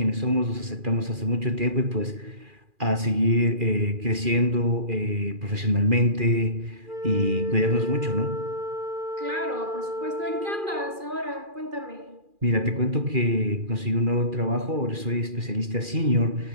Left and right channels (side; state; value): left; late; 2.4 ms